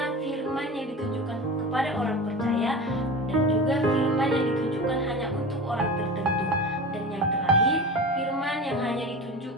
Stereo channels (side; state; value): both; normal; correlation 0.31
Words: firman yang ditunjukkan kepada orang percaya. Dan juga firman yang ditunjukkan hanya untuk orang tertentu. Dan yang terakhir, firman yang hanya